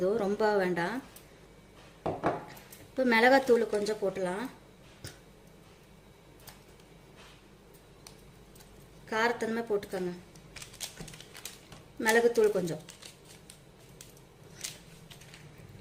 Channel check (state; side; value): identical; both; correlation 1.00